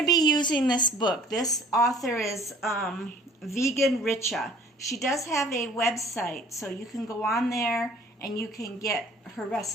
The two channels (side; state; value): both; normal; correlation 0.52